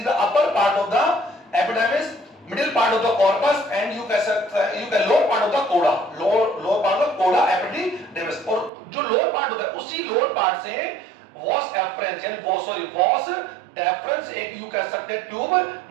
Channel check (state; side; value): drops out; left; at 8.7 s